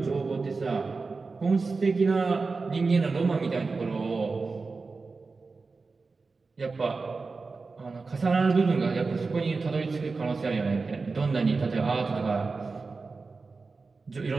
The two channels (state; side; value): quieter; left; 4.2 dB